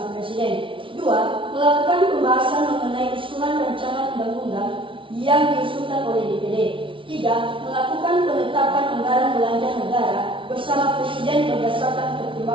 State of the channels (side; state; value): left; late; 0.25 ms